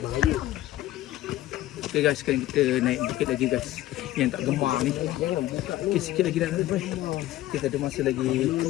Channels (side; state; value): right; quieter; 15.0 dB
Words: Okay guys, sekarang kita naik bukit lagi guys. Yang tak gemar ni. Okay, sikit lagi dah sampai. Kita ada masa lagi